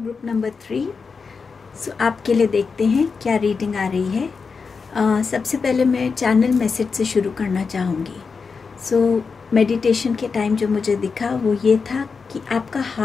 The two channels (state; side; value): quieter; right; 5.1 dB